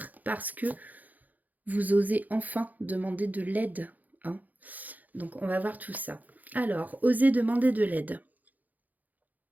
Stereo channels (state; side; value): late; left; 0.081 ms